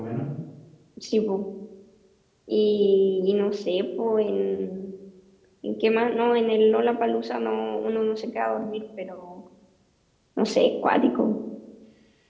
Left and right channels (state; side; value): identical; both; correlation 1.00